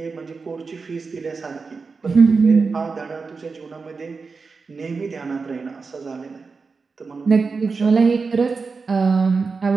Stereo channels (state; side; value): quieter; left; 4.6 dB